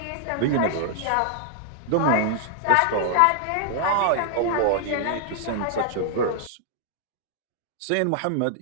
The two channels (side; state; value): both; different; correlation -0.01